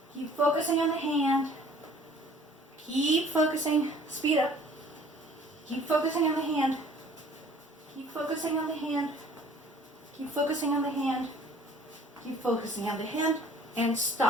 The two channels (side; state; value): both; normal; correlation 0.53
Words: Keep focusing on the hand. Keep focusing. Speed up. Keep focusing on the hand. Keep focusing on the hand. Keep focusing on the hand. Keep focusing on the hand. And